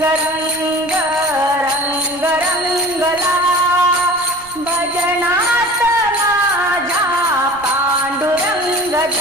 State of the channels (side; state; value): right; noise; rumble, 24 dB below the sound